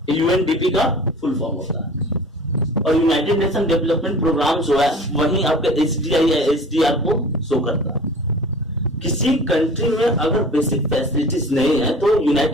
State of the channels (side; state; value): both; normal; correlation 0.42